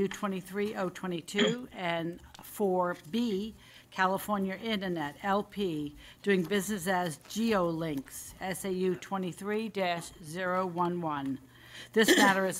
23022, and 4B, California Internet, LP, doing business as GeoLinks, SAU 23-011. This matter is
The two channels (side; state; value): both; identical; correlation 1.00